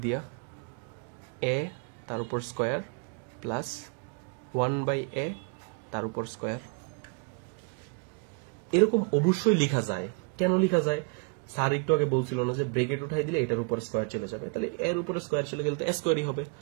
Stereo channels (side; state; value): left; quieter; 34.4 dB